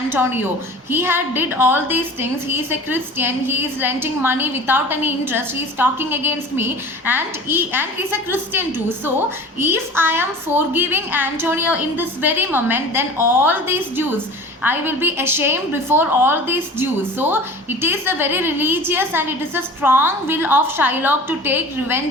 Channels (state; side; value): normal; both; correlation 0.40